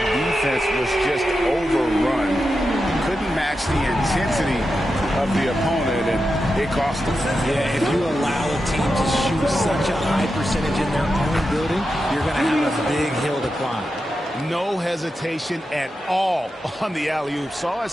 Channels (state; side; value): normal; both; correlation 0.89